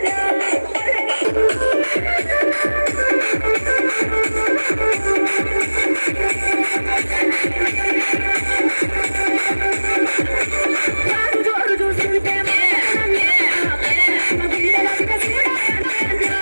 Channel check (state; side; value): inverted; both; correlation -1.00